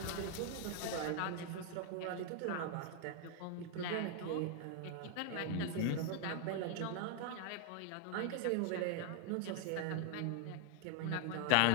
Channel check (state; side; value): different; both; correlation 0.00